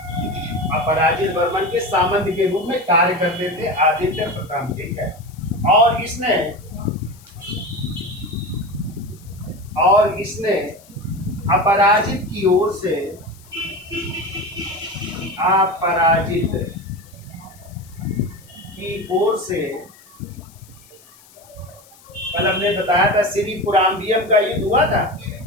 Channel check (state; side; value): noise; left; hiss, 25 dB below the sound